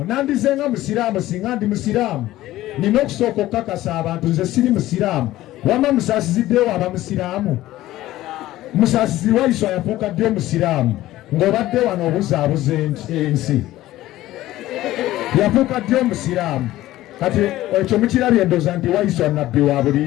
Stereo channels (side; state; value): right; quieter; 15.6 dB